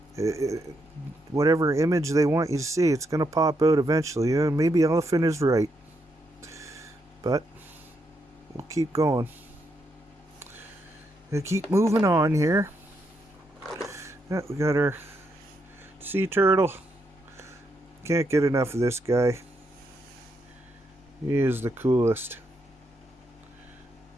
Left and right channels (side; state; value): both; normal; correlation 0.79